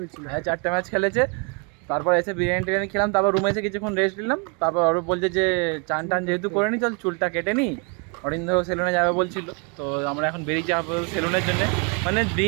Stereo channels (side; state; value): left; quieter; 34.9 dB